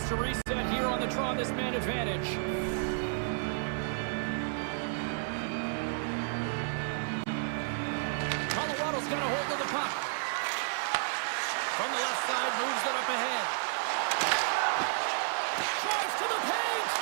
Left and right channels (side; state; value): left; silent; digital silence